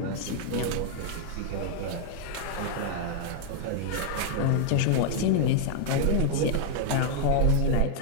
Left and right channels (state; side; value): different; both; correlation 0.00